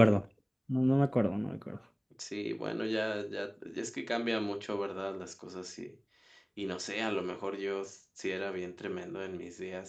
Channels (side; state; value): both; identical; correlation 1.00